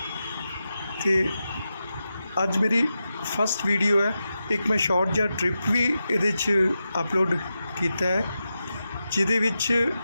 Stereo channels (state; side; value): inverted; both; correlation -0.90